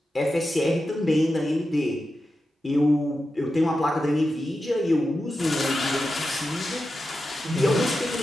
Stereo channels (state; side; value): normal; both; correlation 0.90